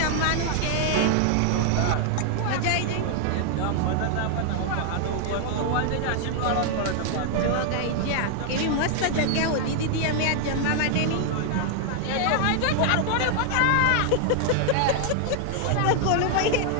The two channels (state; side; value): different; both; correlation 0.00